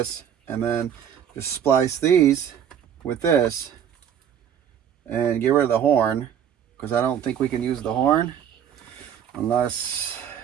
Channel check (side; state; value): left; quieter; 9.0 dB